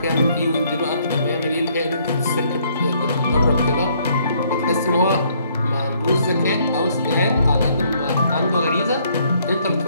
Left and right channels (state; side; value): inverted; both; correlation -0.67